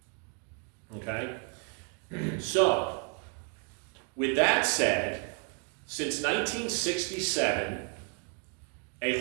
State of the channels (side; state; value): left; quieter; 39.0 dB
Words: Okay? So, with that said, since 1967, A